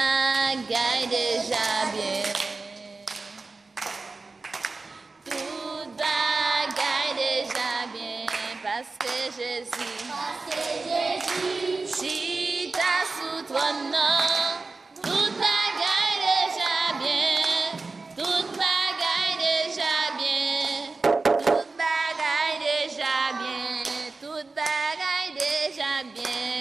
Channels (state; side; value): quieter; left; 3.8 dB